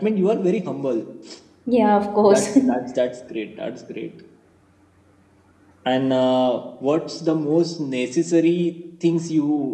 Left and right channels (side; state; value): both; identical; correlation 1.00